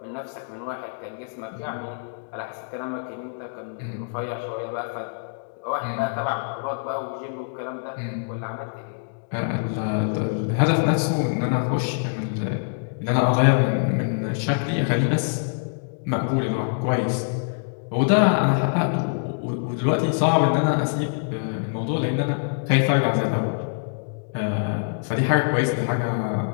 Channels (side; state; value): right; silent; digital silence